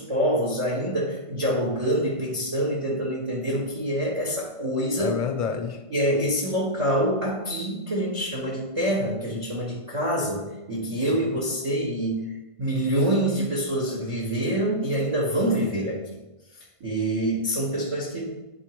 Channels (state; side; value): late; left; 1.5 ms